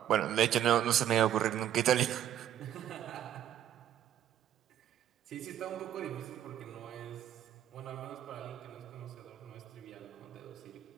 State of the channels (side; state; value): left; quieter; 11.1 dB